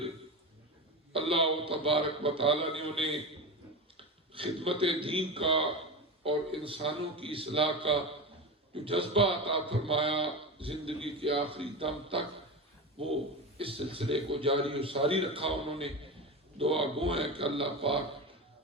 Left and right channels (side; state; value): both; normal; correlation 0.22